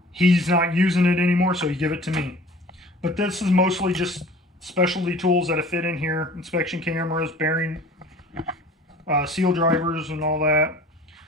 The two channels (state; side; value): normal; both; correlation 0.46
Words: He's not using it anymore, so he give it to me. But this is mostly just specialty tools that fit in here. Inspection cameras, bearing, seal drivers and all that.